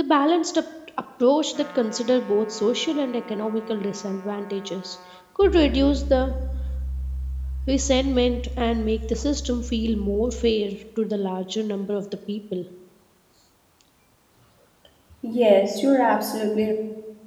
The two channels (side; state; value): both; identical; correlation 1.00